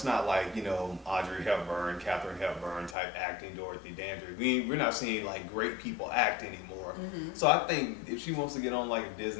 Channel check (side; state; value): right; drops out; at 3.0 s